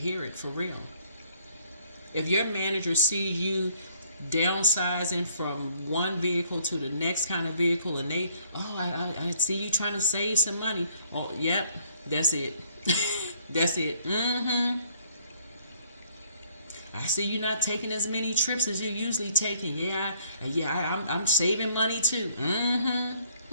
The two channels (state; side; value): inverted; both; correlation -0.64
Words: it for real. If your manager sees you downsizing from one vehicle to the next kind of vehicle, and I see you trying to save some money. Oh, yep, that's it. That's it. I see you not taking as many trips as you're usually taking. I'm saving money too.